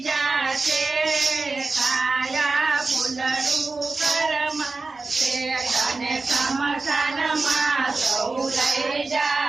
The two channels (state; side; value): quieter; left; 3.8 dB